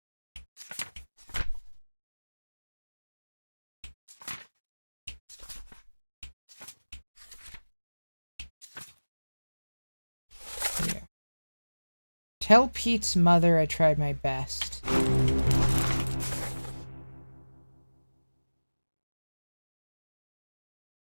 Tell Pete's mother I tried my best.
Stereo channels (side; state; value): both; inverted; correlation -1.00